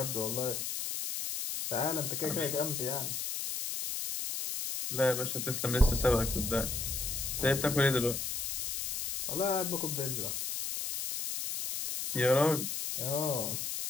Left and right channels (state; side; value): noise; left; hiss, 3 dB below the sound